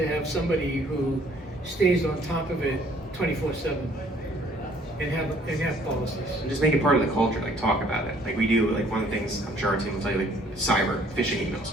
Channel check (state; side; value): normal; both; correlation 0.60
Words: have somebody who stays on top of it 24/7 and have policies. And just make it part of the culture, talk about it. We do, one of the things, I'm sure our team will tell you, cyber phishing emails.